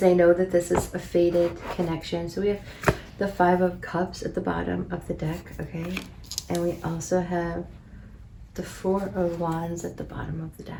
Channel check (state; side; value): identical; both; correlation 1.00